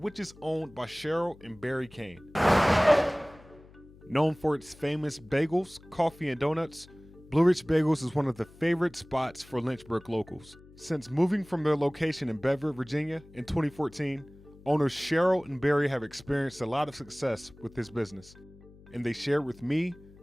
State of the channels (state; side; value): noise; left; hum, 23 dB below the sound